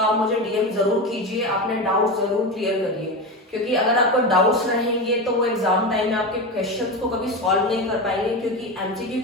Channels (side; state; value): both; normal; correlation 0.20